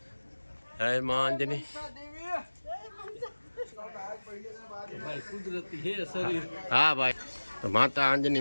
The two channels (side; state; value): both; inverted; correlation -1.00